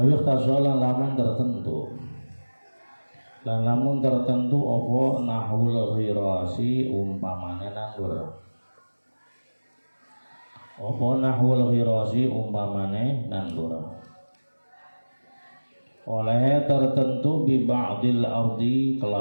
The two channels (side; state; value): both; inverted; correlation -1.00